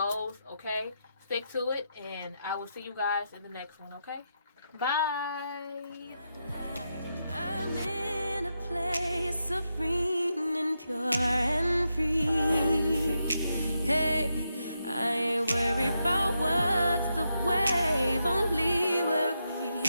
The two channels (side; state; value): both; inverted; correlation -0.84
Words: okay? Stick to it, and I will see you guys in the next one, okay? Bye! I'm in a place serene and pure and free. Hey, I ain't worried about what